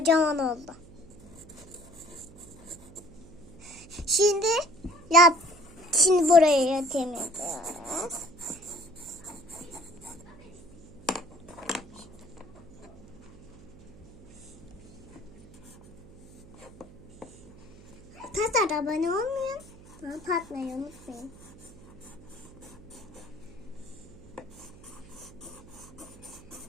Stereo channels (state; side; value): noise; right; hum, 21 dB below the sound